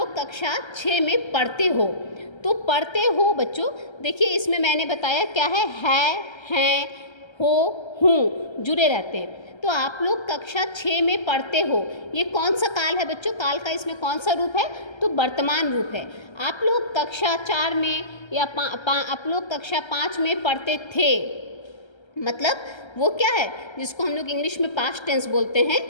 कक्षा 6 में पढ़ते हो, तो पढ़ते हो बच्चों, देखिए इसमें मैंने बताया क्या है, हैं, हो, हूँ जुड़े रहते हैं। तो आप लोग कक्षा 6 में पढ़ते हो, ये कौन सा काल है बच्चों? काल का इसमें कौन सा रूप है? तो वर्तमान रूप है। आप लोग कक्षा 4 में या आप लोग कक्षा 5 में पढ़ते थे, मतलब वो क्या है जिसको हम लोग इंग्लिश में पास्ट टेंस बोलते हैं,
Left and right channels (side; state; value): right; late; 1.3 ms